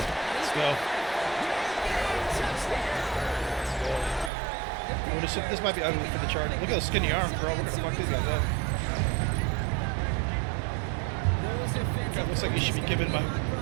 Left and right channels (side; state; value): left; drops out; at 4.3 s